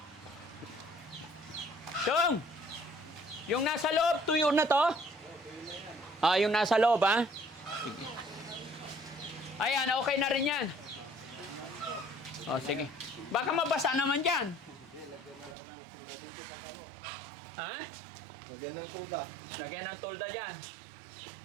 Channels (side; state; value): left; drops out; at 15.6 s